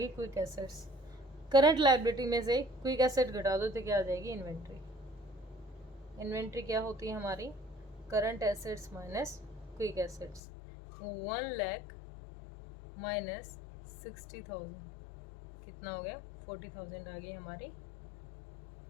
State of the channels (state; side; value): drops out; right; at 10.4 s